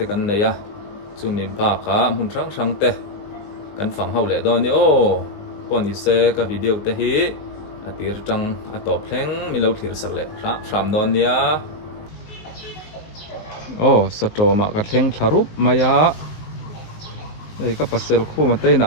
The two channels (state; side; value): late; right; 20 ms